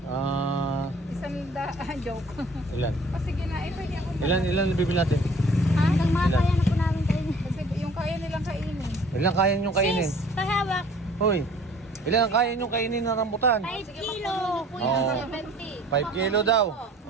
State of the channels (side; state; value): both; normal; correlation 0.52